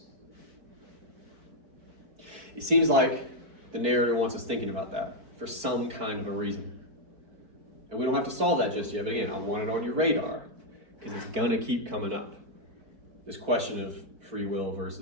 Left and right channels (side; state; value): left; late; 4.6 ms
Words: It seems like the narrator wants us thinking about that for some kind of a reason. And we don't have to solve that just yet, but again, I want it on your radar because it's going to keep coming up. This question of free will